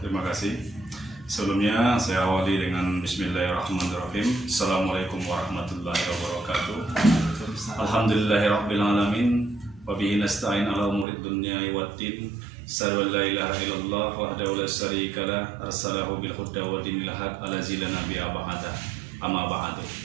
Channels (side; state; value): left; drops out; at 11.1 s